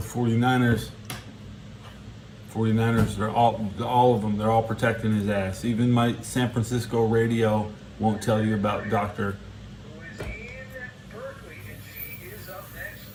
49ers. 49ers, they're all of them, they're all protecting his ass. Even my San Francisco radio won't tell you about Dr. Who is in Berkeley, and she is up next.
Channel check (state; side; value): identical; both; correlation 1.00